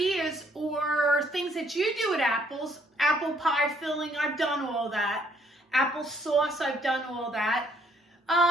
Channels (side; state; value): both; normal; correlation 0.67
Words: or things that you do with apples, apple pie filling, I've done all that. Apple sauce, I've done all that.